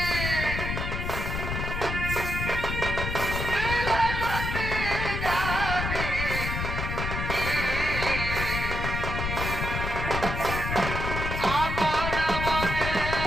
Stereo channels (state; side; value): noise; left; rumble, 3 dB below the sound